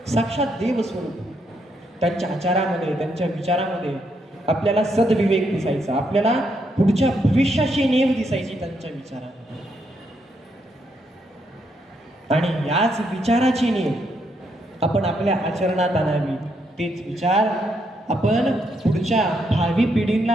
साक्षात देव स्वरूप. त्यांच्या आचारामध्ये, त्यांच्या विचारामध्ये आपल्याला सद्विवेक दिसायचा, आपल्याला पुढच्या भविष्याची नेव दिसायची त्यांच्या विचारामध्ये. आणि याच विचाराची नेव आपण आपल्या आचरणात आणावी. तेच विचार आपण पुढच्या भावी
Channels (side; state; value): both; normal; correlation 0.77